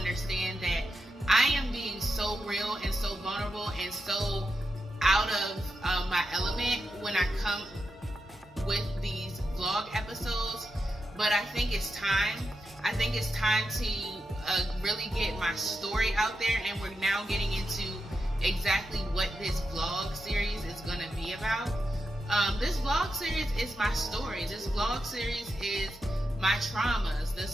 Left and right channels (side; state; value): both; normal; correlation 0.87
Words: that I am being so real and so vulnerable and so out of my element when I come with these vlog episodes. But I think it's time. I think it's time to really get my story out there, and we're now getting into exactly what this vlog series is going to be about. This vlog series is my story. This vlog series is my traumas.